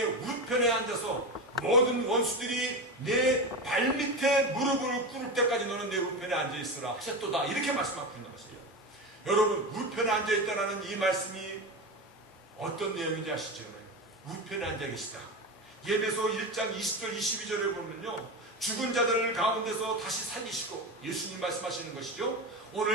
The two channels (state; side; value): normal; both; correlation 0.21